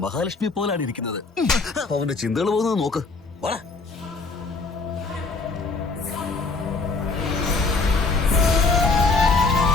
മഹാലക്ഷ്മി പോലാണ് ഇരിക്കുന്നത്. അവന്റെ ചിന്തകൾ പോകുന്നത് നോക്ക്. വാടാ.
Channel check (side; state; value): right; quieter; 3.9 dB